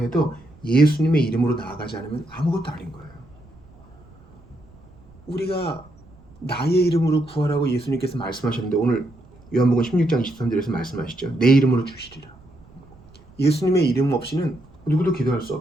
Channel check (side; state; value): right; noise; rumble, 25 dB below the sound